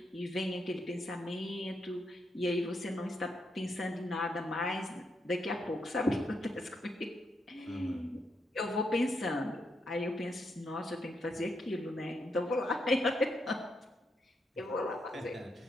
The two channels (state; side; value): normal; both; correlation 0.80